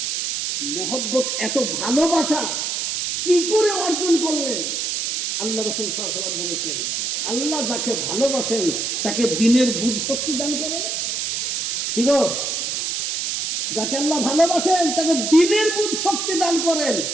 মহব্বত, এত ভালোবাসা কি করে অর্জন করলেন? আল্লাহ রাসূল সাল্লাল্লাহু আলাইহি ওয়াসাল্লাম বলেছেন, আল্লাহ যাকে ভালোবাসেন তাকে দ্বীনের বুঝ শক্তি দান করেন। কি গো? যাকে আল্লাহ ভালোবাসেন তাকে দ্বীনের বুঝ শক্তি দান করেন।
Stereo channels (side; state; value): right; noise; hiss, 1 dB below the sound